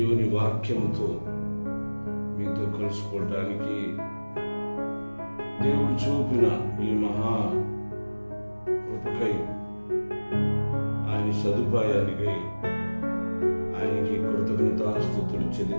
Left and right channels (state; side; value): inverted; both; correlation -1.00